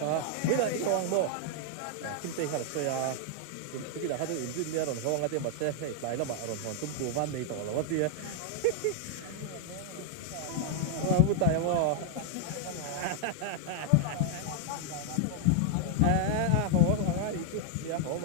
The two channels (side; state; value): both; different; correlation -0.01